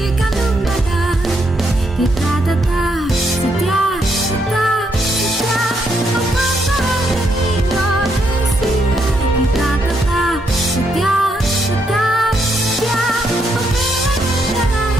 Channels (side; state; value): both; normal; correlation 0.77